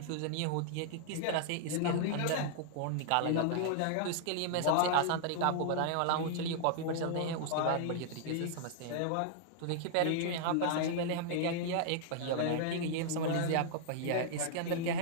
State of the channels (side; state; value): both; different; correlation -0.01